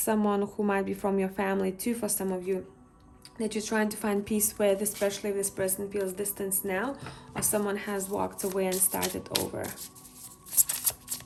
who might be from your family too, for some of you, that you're trying to find peace with, especially if this person feels distance now, or someone has walked away and started over.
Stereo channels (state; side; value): identical; both; correlation 1.00